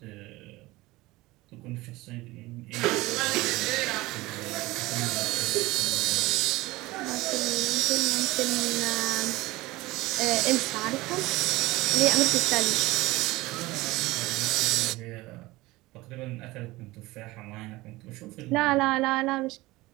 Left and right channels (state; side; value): quieter; left; 19.9 dB